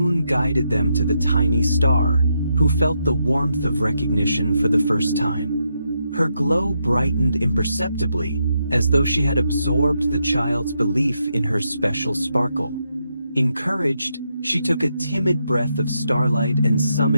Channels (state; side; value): inverted; both; correlation -0.81